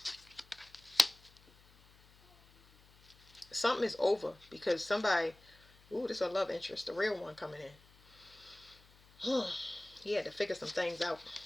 Something is over because somebody, ooh, this is a love interest, the real one coming in. He had to figure some things out.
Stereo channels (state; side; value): noise; left; hum, 26 dB below the sound